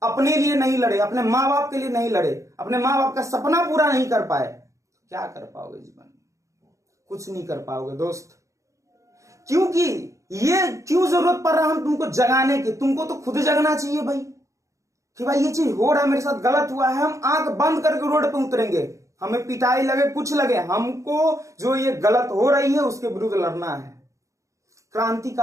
अपने लिए नहीं लड़े, अपने माँ बाप के लिए नहीं लड़े, अपने माँ बाप का सपना पूरा नहीं कर पाए। क्या कर पाओगे जीवन में? कुछ नहीं कर पाओगे दोस्त। क्योंकि ये क्यों जरूरत पड़ रहा है हम तुमको जगाने की? तुमको तो खुद जगना चाहिए भाई कि भाई ये चीज हो रहा है, मेरे साथ गलत हुआ है। हम आंख बंद करके रोड पे उतरेंगे, हमें पिटाई लगे कुछ लगे, हमको जो ये गलत हो रही है उसके विरुद्ध लड़ना है।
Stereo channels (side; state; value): left; late; 0.15 ms